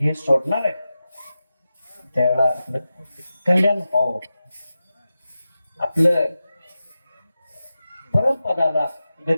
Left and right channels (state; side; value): inverted; both; correlation -0.93